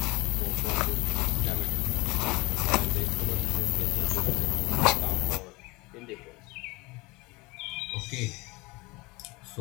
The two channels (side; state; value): right; quieter; 24.0 dB